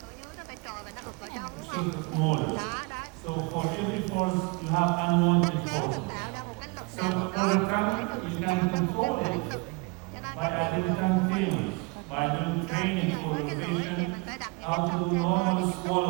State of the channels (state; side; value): quieter; left; 28.4 dB